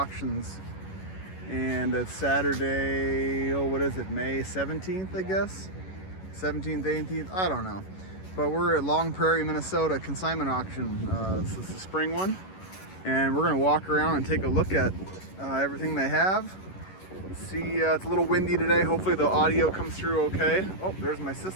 and it's Saturday. Oh, what is it? May 17th, I guess. 17th, 18th. I don't know. But we're at Long Prairie, Minnesota consignment auction. This is the spring one, and we're gonna walk around and take a look at everything they have. See, it's a little windy today. Hopefully the audio comes through okay. Oh, there's my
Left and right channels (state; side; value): late; right; 11 ms